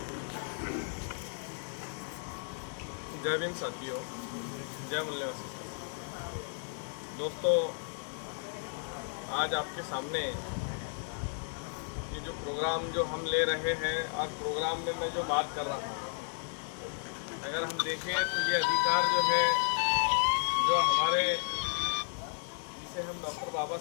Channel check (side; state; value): right; silent; 55 dB below the other